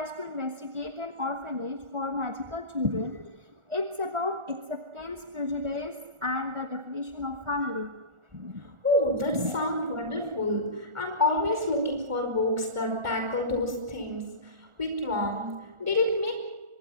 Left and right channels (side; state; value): left; late; 1.4 ms